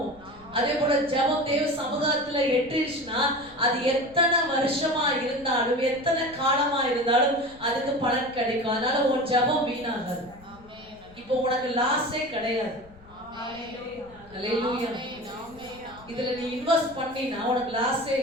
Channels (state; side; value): noise; left; rumble, 24 dB below the sound